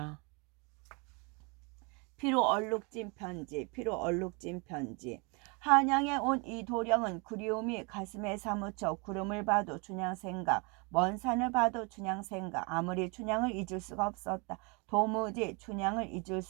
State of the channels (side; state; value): left; quieter; 31.3 dB